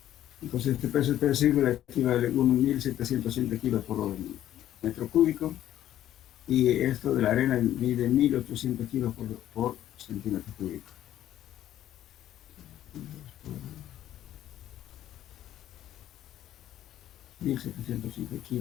Entonces este peso específico equivale a 1.707 kilos por metro cúbico, y esto de la arena mide 1.800 kilos por centímetro cúbico. 1.705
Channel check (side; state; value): right; quieter; 12.2 dB